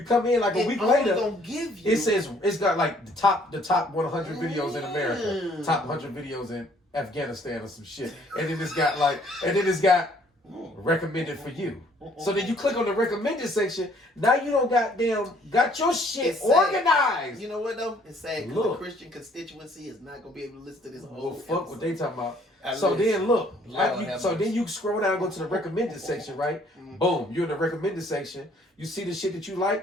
come in like a week later. Gonna give you. It says it's got like the top 100 videos in America, top 100 videos in Afghanistan or some shit, and then it's got recommended for you. So then you click on the recommended section. Now you don't got your shit organized. You know what though? It's sad because the Christian constituency is not gonna be able to listen to this whole. Well, fuck episode. what they talking about. Then you scroll down, and go to the recommended section, right? Boom, you're in the recommended section. You see the shit that you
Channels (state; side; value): normal; both; correlation 0.61